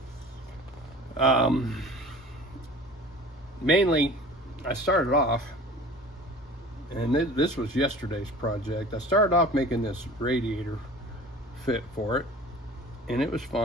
Mainly, I started off, and this was yesterday's project. I started off making this radiator fit for it, and it was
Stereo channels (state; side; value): normal; both; correlation 0.42